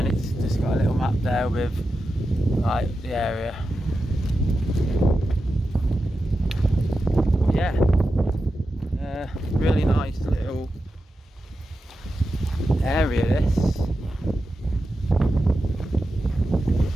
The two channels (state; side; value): normal; both; correlation 0.90